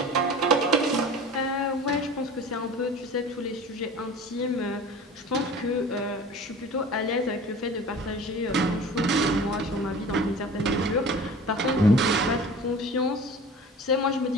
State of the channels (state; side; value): normal; both; correlation 0.40